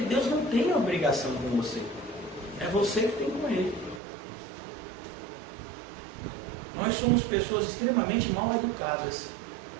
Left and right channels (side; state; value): left; drops out; at 4.0 s